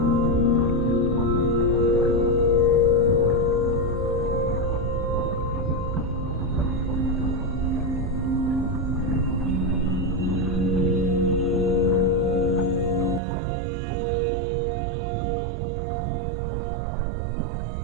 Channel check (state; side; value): drops out; left; at 13.2 s